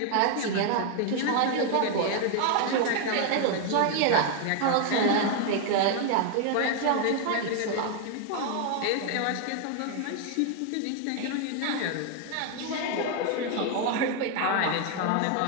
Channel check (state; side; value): different; both; correlation 0.00